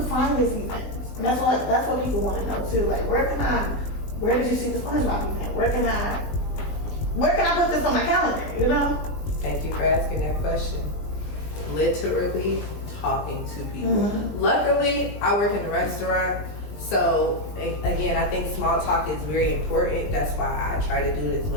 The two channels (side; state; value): right; late; 20 ms